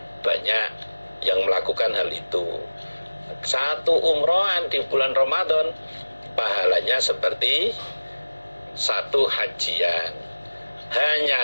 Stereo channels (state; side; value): inverted; both; correlation -1.00